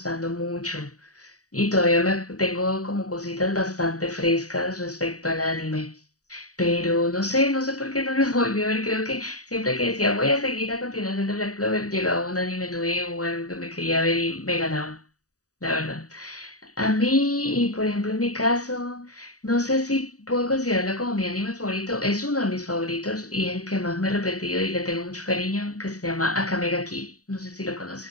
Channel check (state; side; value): late; right; 0.66 ms